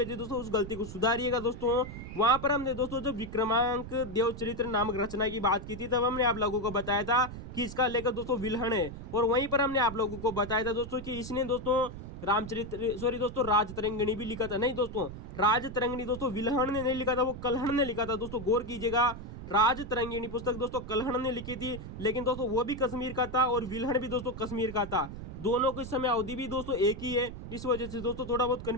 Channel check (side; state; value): right; noise; rumble, 10 dB below the sound